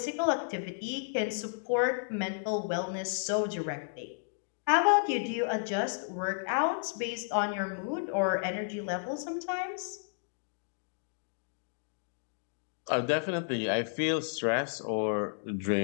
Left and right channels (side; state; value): right; silent; digital silence